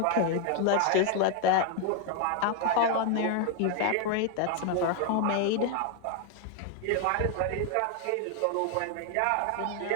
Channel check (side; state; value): both; different; correlation 0.00